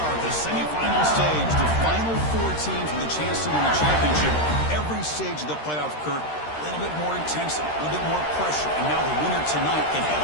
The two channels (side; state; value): right; late; 13 ms